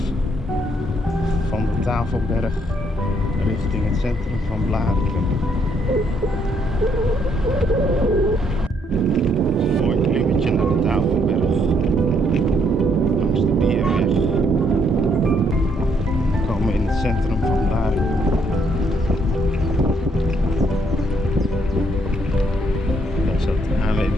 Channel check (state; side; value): normal; both; correlation 0.70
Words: van de Tafelberg richting het centrum van Blaricum. Een mooi klimmetje naar de Tafelberg langs de Bierweg. We komen in het centrum van Blaricum. Daar staat het